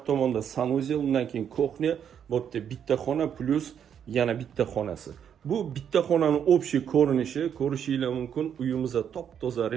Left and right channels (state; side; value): quieter; left; 8.5 dB